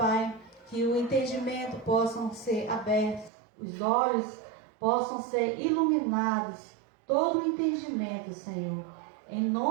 que o entendimento possam ser abertos, os olhos possam ser iluminados, todo o entendimento, Senhor, em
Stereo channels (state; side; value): drops out; left; at 3.3 s